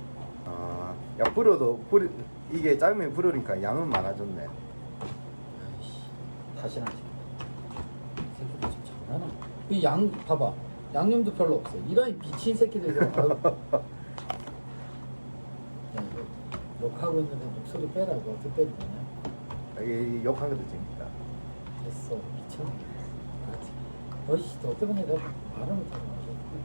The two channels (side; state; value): both; inverted; correlation -1.00